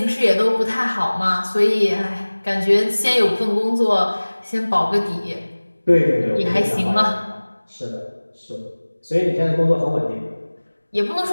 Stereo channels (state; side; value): inverted; both; correlation -1.00